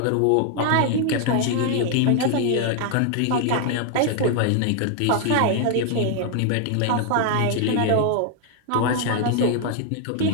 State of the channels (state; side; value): different; both; correlation 0.00